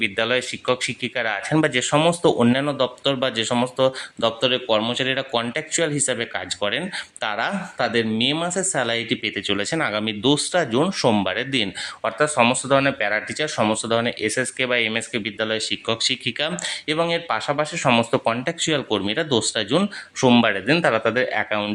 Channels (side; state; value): both; identical; correlation 1.00